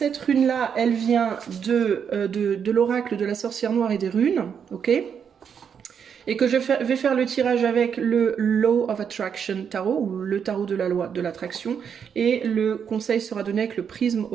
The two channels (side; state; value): left; quieter; 7.4 dB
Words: rune-là, elle vient de l'oracle de la sorcière noire et des runes, ok? Et que je vais faire le tirage avec le Law of Attraction Tarot, ou le tarot de la loi de l'attraction, et le conseil sera donné avec le prisme